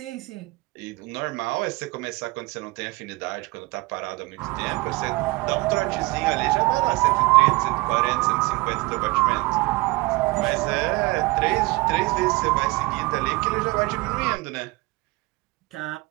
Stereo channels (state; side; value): quieter; left; 23.2 dB